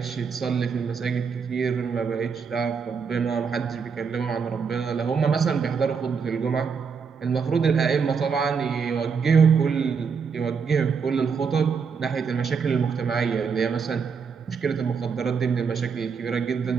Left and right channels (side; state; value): left; quieter; 5.9 dB